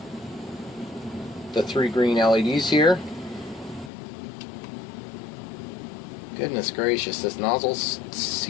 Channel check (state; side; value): drops out; right; at 3.9 s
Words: the 3 green LEDs here. Goodness gracious, this nozzle's